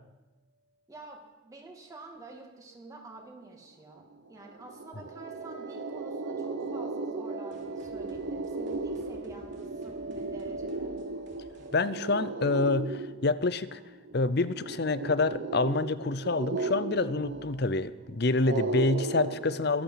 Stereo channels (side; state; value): both; normal; correlation 0.06